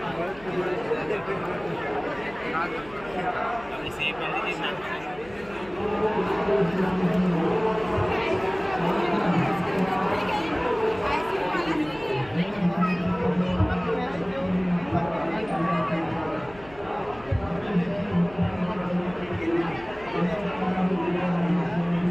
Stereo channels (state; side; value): noise; left; hum, 21 dB below the sound